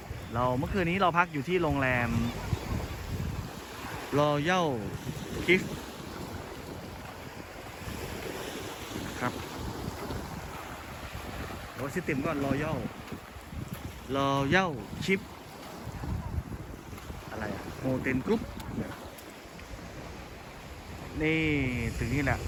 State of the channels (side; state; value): both; identical; correlation 1.00